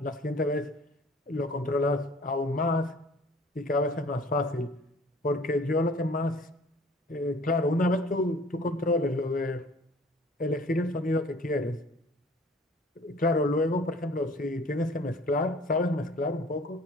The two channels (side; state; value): both; normal; correlation 0.50